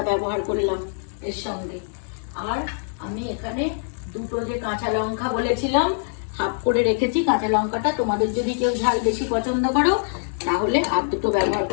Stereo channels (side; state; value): right; silent; 63 dB below the other